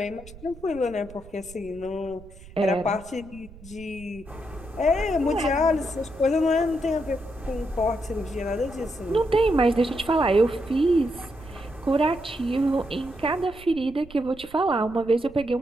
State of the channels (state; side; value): noise; right; rumble, 19 dB below the sound